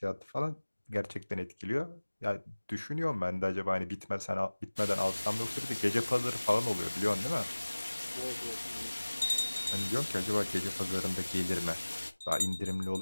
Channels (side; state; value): both; inverted; correlation -1.00